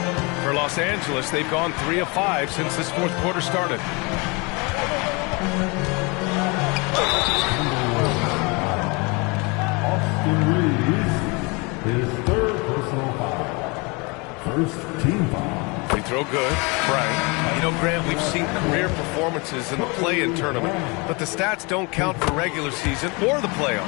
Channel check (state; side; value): quieter; right; 28.8 dB